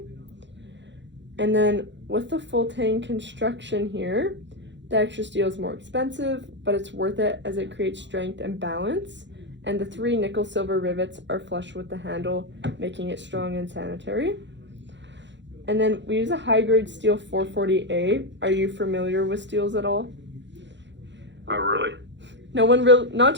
And then with the full tang construction here, the extra steel is more expensive, but it's worth it as it creates strength and balance. And the 3 nickel silver rivets are flush with the handle, making it strong and sanitary. And then we use a high-grade steel 440A. Are you familiar with steels at all? Not really. Not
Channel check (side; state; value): left; late; 0.52 ms